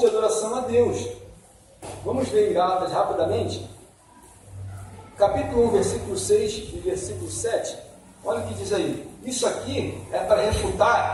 e adoração a Deus. Vamos ver em Gálatas rapidamente. Capítulo 1, versículo 6 e versículo 7. Olha o que diz aí. Isso aqui é para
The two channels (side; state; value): both; identical; correlation 1.00